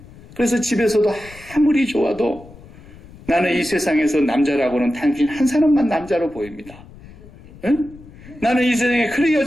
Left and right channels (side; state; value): left; noise; rumble, 20 dB below the sound